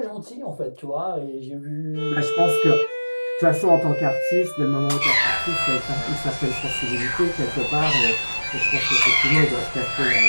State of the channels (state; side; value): inverted; both; correlation -1.00